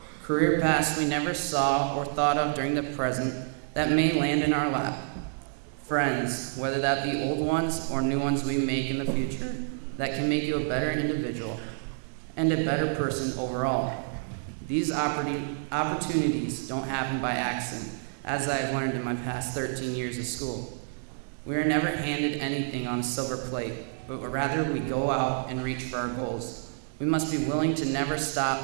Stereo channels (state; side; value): silent; left; digital silence